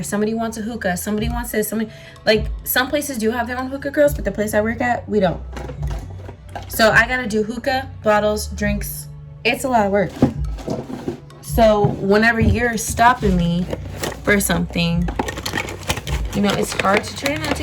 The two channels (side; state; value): both; identical; correlation 1.00